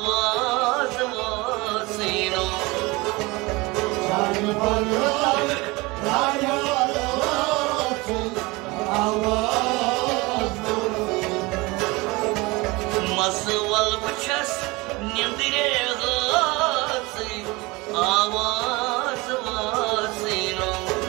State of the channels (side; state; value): left; quieter; 23.6 dB